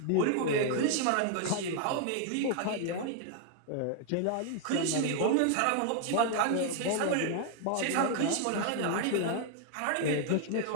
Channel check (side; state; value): both; different; correlation 0.00